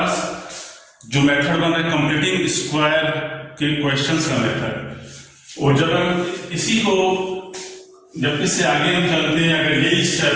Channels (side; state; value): both; identical; correlation 1.00